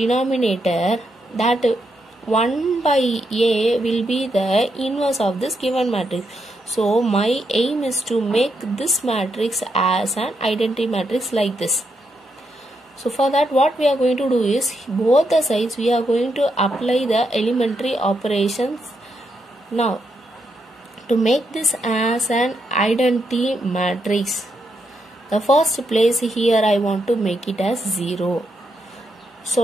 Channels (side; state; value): both; normal; correlation 0.81